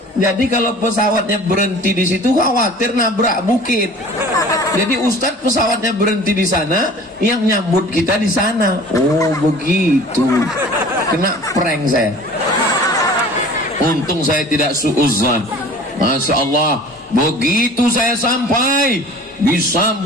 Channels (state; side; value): normal; both; correlation 0.45